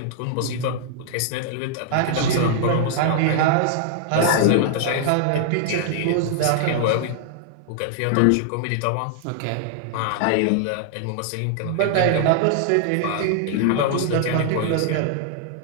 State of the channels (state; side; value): different; both; correlation -0.01